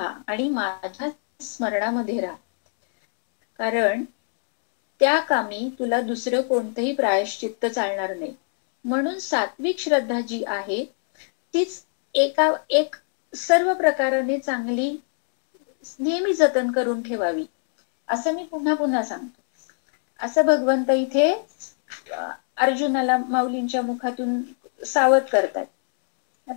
आणि माझ्या स्मरणामध्ये राहा, कारण त्या कामी तुला दुसरं कोणतंही प्रायश्चित्त चालणार नाही. म्हणून सात्विक श्रद्धा जी आहे तीच एक सर्व प्रकाराने चांगली नेहमी जतन करून ठेवावी, असं मी पुन्हा पुन्हा सांगतो. असं भगवंत इथे अर्जुनाला माऊलींच्या मुखातून सावध करतात.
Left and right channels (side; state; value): right; silent; digital silence